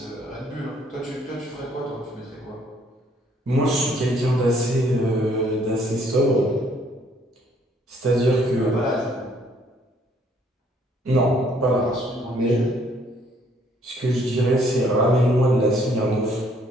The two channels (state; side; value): normal; both; correlation 0.64